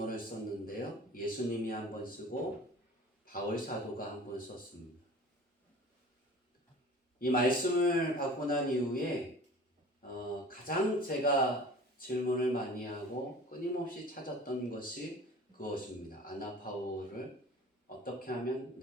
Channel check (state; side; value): normal; both; correlation 0.43